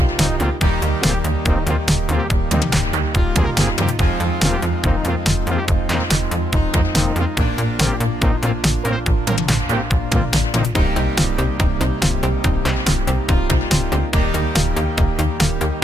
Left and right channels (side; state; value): both; normal; correlation 0.82